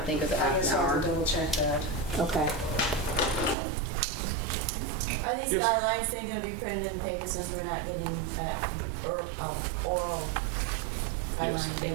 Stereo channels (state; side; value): drops out; left; at 3.6 s